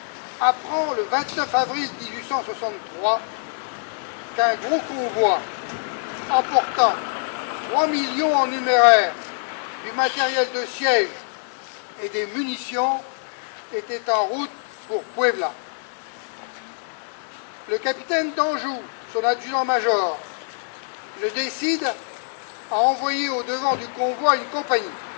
apprend le 29 avril 1863 qu'un gros convoi emportant 3 millions en numéraire, du matériel de siège et des munitions était en route pour Puebla. Le capitaine d'Anjou, son adjudant-major, le décide à envoyer au devant du convoi une compagnie.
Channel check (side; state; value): right; silent; digital silence